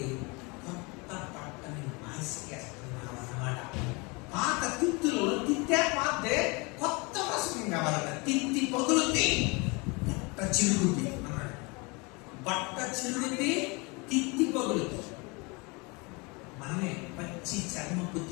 కొత్త బట్టని మాసికేస్తున్నాం అన్నమాట. పాత తిత్తులో తిత్తే పాతే కొత్త వసతి కావాలట. తిత్తి పగులుద్ది, బట్ట చిరుగుద్ది అన్నాడు. బట్ట చిరుగుద్ది, తిత్తి పగులుద్ది. మనమే పచ్చి చర్మపు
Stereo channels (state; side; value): quieter; right; 28.2 dB